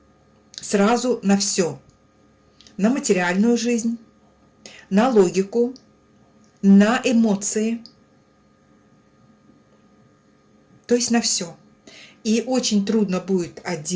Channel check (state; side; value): identical; both; correlation 1.00